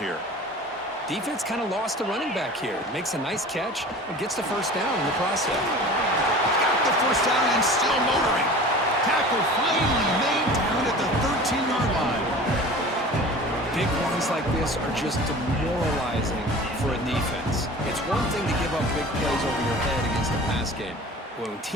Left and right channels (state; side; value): normal; both; correlation 0.40